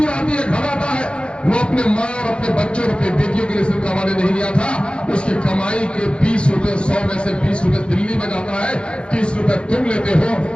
آتی ہے گھر آتا ہے، وہ اپنے ماں اور اپنے بچوں اور اپنے بیٹیوں کے لیے صرف کمانے نہیں گیا تھا، اس کی کمائی کے 20 روپے 100 میں سے 20 روپے دلی میں جاتا ہے، 30 روپے تم لیتے ہو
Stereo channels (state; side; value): late; right; 0.056 ms